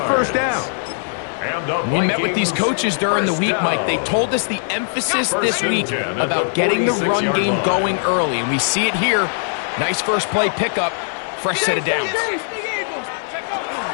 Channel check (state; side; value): silent; right; digital silence